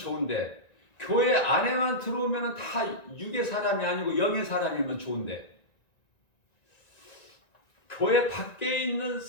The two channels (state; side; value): late; right; 1.9 ms